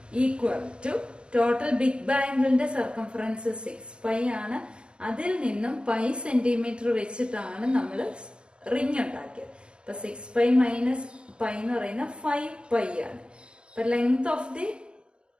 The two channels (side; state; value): left; late; 0.054 ms